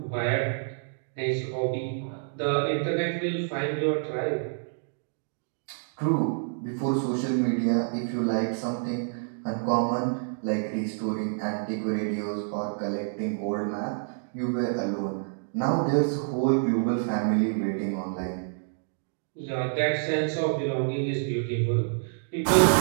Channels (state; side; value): silent; left; digital silence